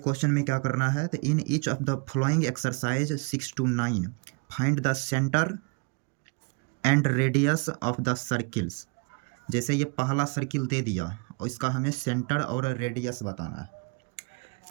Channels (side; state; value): left; quieter; 31.4 dB